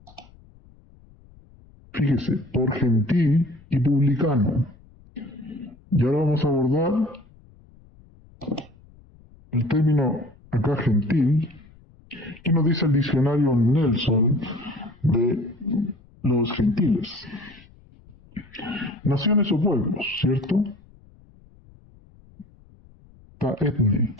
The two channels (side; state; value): left; noise; rumble, 26 dB below the sound